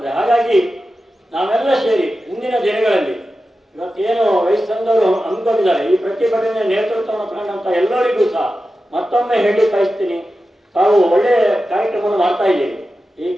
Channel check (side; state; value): both; normal; correlation 0.92